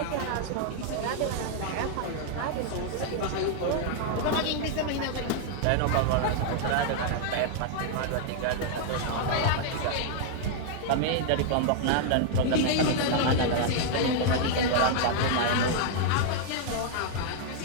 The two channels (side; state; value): both; different; correlation 0.00